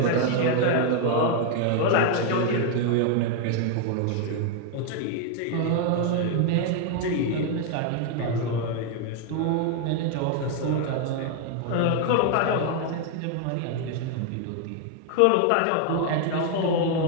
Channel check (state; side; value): different; both; correlation 0.00